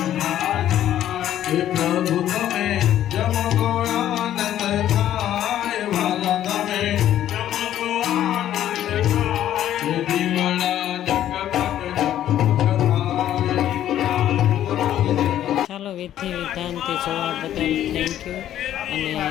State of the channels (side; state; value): right; quieter; 11.7 dB